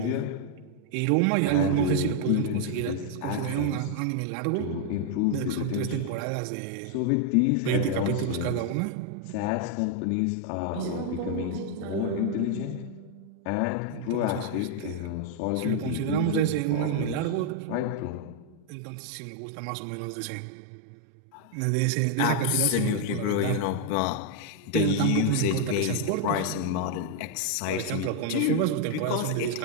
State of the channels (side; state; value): both; different; correlation 0.00